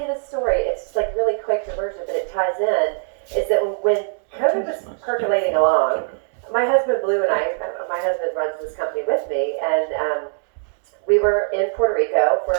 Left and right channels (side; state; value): left; silent; digital silence